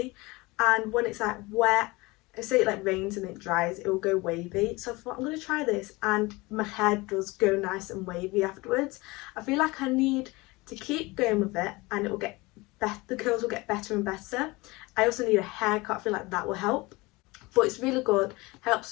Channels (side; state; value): right; quieter; 23.0 dB